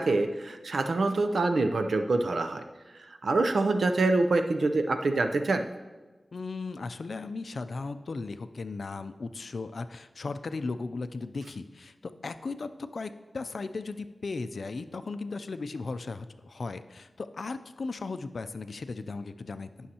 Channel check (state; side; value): normal; both; correlation 0.92